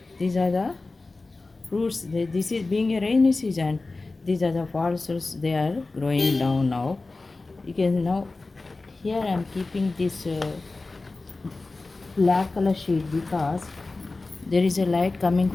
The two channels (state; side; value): quieter; right; 3.4 dB